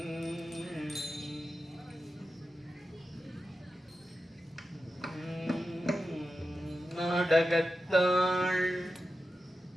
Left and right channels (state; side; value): normal; both; correlation 0.91